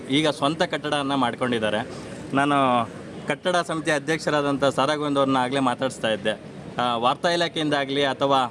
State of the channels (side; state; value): both; identical; correlation 1.00